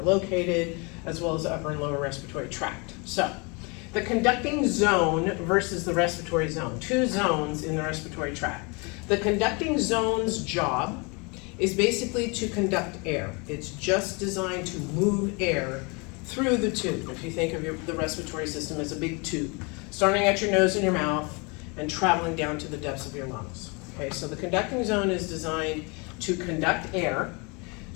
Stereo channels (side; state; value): right; quieter; 30.3 dB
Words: located, as well as the upper and lower respiratory tract. So the conducting zone versus the respiratory zone, two zones in the respiratory tract. The conducting zone's job is basically to conduct air. It's just designed to move air through the tube. If you think of the respiratory system as a big tube, starting at your nose and your mouth and traveling down to the depths of your lungs. Okay, so the conducting zone is designed to conduct air,